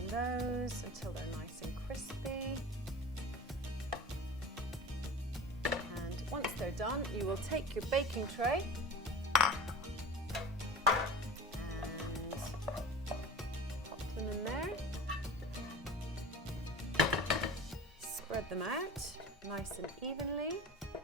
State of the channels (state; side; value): normal; both; correlation 0.34